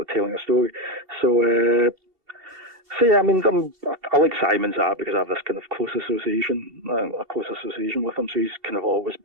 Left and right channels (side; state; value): left; late; 2.7 ms